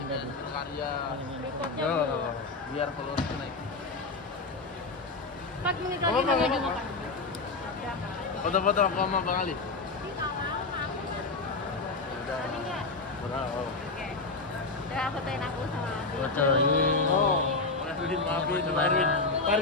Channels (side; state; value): right; quieter; 3.7 dB